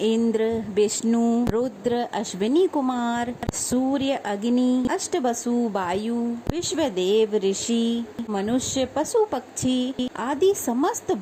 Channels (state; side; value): identical; both; correlation 1.00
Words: विष्णु, रुद्र, अश्विनी कुमार, सूर्य, अग्नि, अष्टवसु, वायु, विश्वदेव, ऋषि, मनुष्य, पशु, पक्षी आदि समस्त